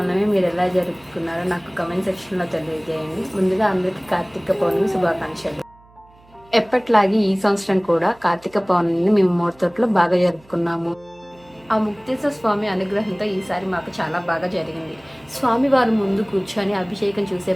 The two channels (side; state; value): right; noise; hum, 28 dB below the sound